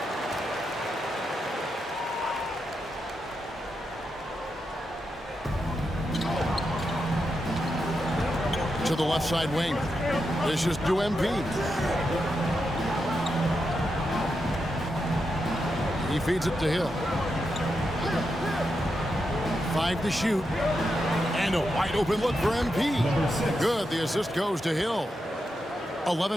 To the left side wing. This is to MP. He feeds it to Hill. 5 to shoot. And a wide open look for MP. Good. The assist goes to Hill.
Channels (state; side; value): normal; both; correlation 0.86